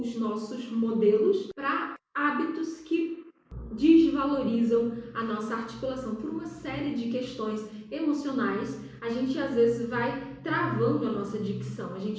nossos modelos para hábitos que desvalorizam a nossa articulação por uma série de questões emocionais. A gente às vezes vai travando a nossa dicção, a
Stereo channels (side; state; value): both; identical; correlation 1.00